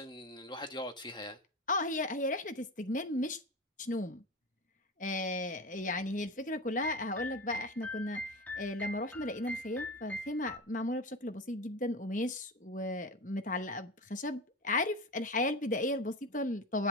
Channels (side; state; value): both; normal; correlation 0.25